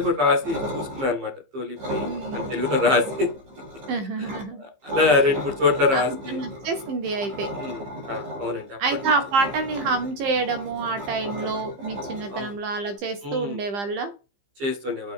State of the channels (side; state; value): left; late; 15 ms